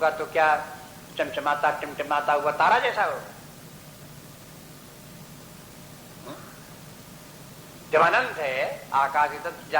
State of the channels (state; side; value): identical; both; correlation 1.00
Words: तो क्या चमचमाता टिमटिमाता हुआ तारा जैसा होगा? जब अनंत है आकाश की